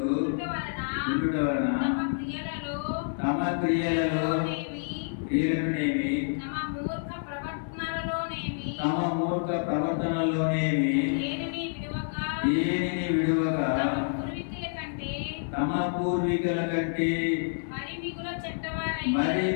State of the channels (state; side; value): silent; right; 59 dB below the other